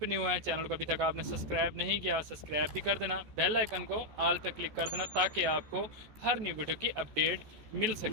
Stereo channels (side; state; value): left; late; 14 ms